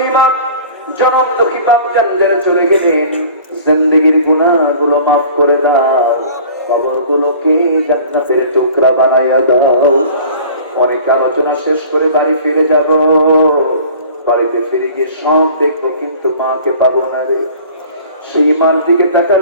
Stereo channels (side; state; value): both; inverted; correlation -0.45